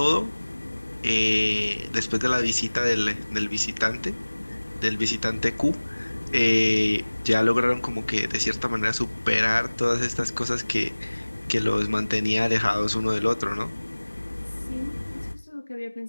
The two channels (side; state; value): both; inverted; correlation -1.00